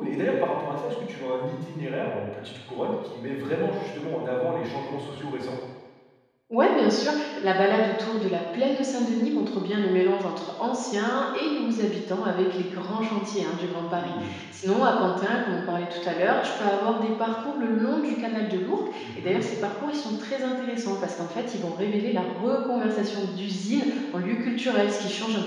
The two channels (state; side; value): identical; both; correlation 1.00